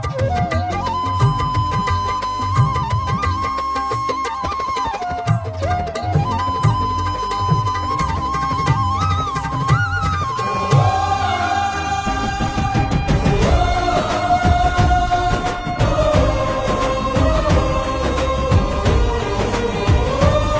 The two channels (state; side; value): identical; both; correlation 1.00